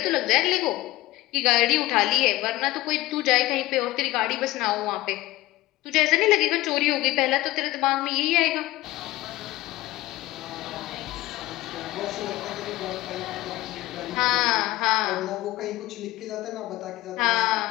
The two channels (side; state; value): right; quieter; 17.6 dB